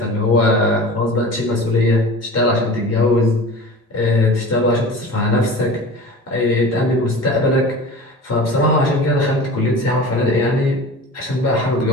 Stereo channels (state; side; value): normal; both; correlation 0.36